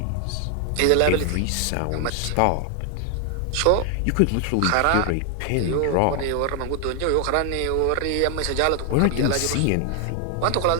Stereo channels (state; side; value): different; both; correlation 0.00